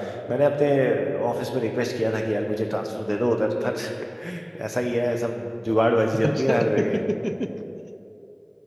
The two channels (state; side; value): identical; both; correlation 1.00